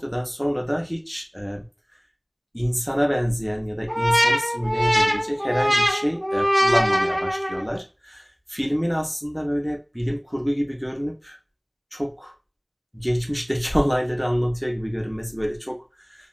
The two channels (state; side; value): identical; both; correlation 1.00